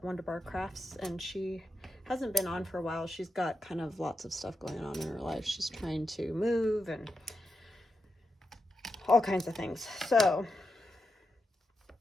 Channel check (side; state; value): both; normal; correlation 0.87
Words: Wonderbar Crafts, and she hasn't been on for a while. She's got kind of lots of stuff going on in her life. She's trying to move and all kinds of things. So,